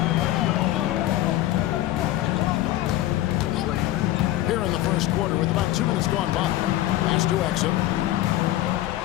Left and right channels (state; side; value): quieter; right; 15.0 dB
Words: Here in the first quarter with about 2 minutes gone by. Pass to Exum.